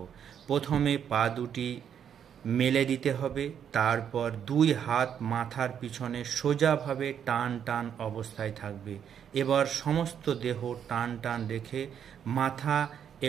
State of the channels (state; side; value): quieter; left; 8.6 dB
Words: প্রথমে পা দুটি মেলে দিতে হবে, তারপর 2 হাত মাথার পিছনে সোজাভাবে টান টান অবস্থায় থাকবে। এবার সমস্ত দেহ টান টান রেখে মাথা